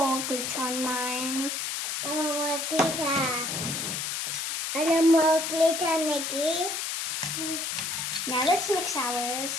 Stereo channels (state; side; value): noise; left; hiss, 2 dB below the sound